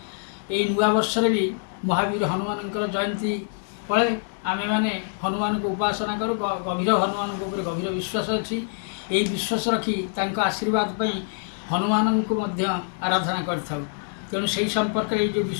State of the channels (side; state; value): right; silent; 62 dB below the other